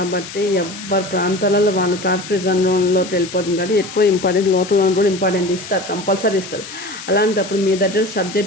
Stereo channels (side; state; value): left; noise; hiss, 12 dB below the sound